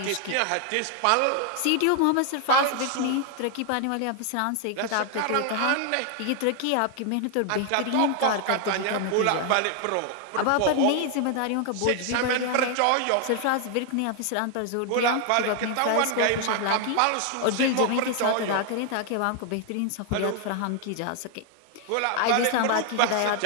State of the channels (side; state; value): both; different; correlation 0.00